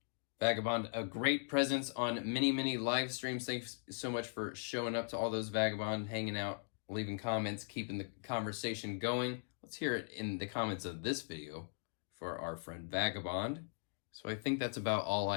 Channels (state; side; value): silent; right; digital silence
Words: Vagabond, a great presence on many live streams. Thanks so much for showing up to all those, Vagabond, hanging out, leaving comments, keeping the conversation going. Let's hear it in the comments of this video for our friend Vagabond. So I think that's about all